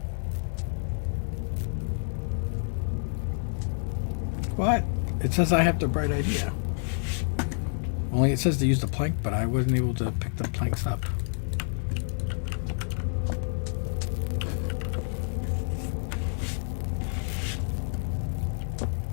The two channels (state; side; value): silent; right; digital silence